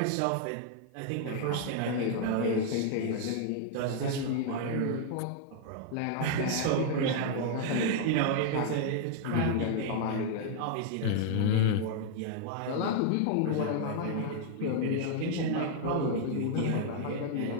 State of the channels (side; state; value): both; different; correlation -0.01